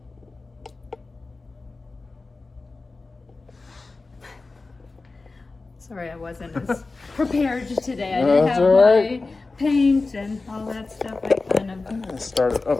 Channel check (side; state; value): right; quieter; 3.6 dB